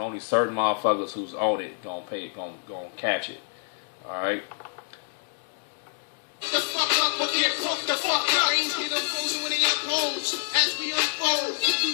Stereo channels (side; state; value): right; silent; digital silence